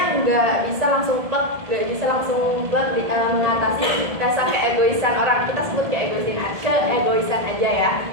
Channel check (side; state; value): left; late; 1.7 ms